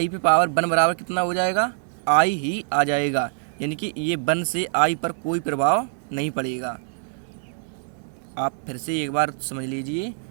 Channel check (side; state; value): left; silent; 62 dB below the other